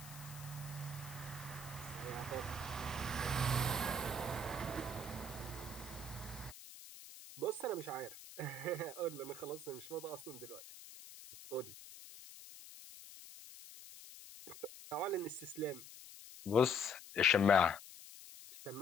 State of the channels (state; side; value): noise; left; hiss, 15 dB below the sound